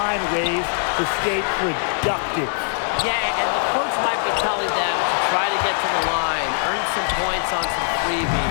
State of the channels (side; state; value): right; silent; 65 dB below the other